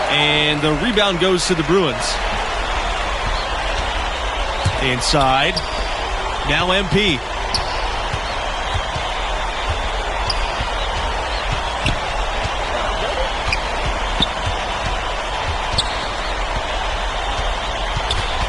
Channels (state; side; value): identical; both; correlation 1.00